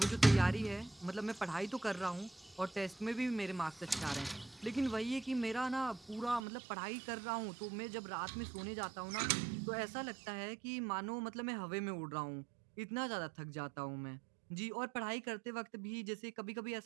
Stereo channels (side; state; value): left; drops out; at 6.4 s